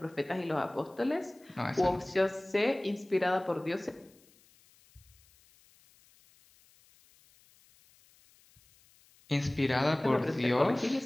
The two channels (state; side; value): noise; left; hiss, 30 dB below the sound